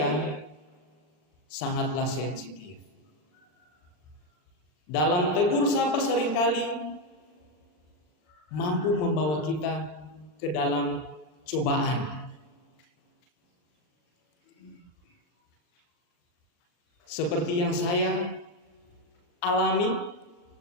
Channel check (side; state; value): right; late; 39 ms